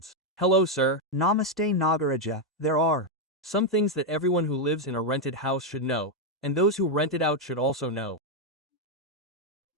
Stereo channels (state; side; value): normal; both; correlation 0.02